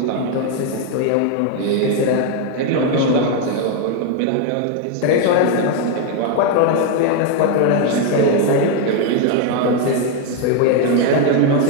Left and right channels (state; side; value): different; both; correlation 0.01